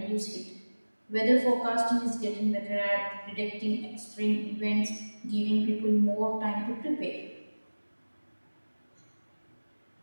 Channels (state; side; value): inverted; both; correlation -1.00